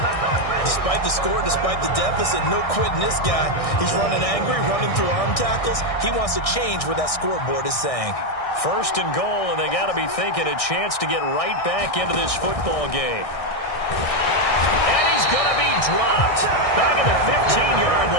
Despite the score, despite the deficit, no quitting this guy. He's running angry, running through arm tackles. He wants to change what that scoreboard is saying. 1st and goal, and they got to be thinking a chance to get right back into this football game. And he's going to be dropped back at the 15-yard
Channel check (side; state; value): right; late; 1.6 ms